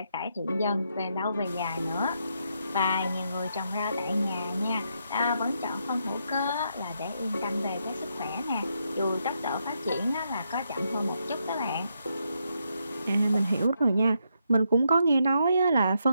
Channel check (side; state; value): both; inverted; correlation -0.79